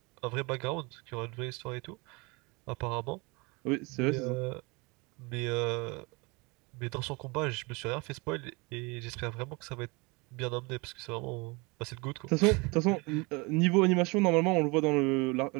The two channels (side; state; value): left; quieter; 27.4 dB